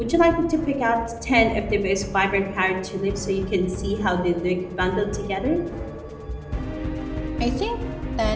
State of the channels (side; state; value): both; identical; correlation 1.00